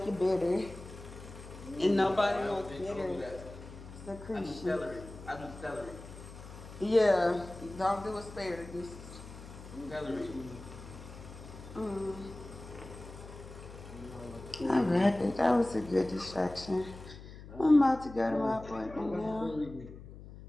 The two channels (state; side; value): noise; left; hum, 15 dB below the sound